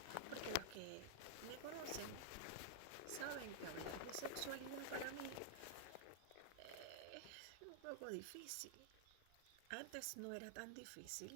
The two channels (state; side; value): different; both; correlation -0.01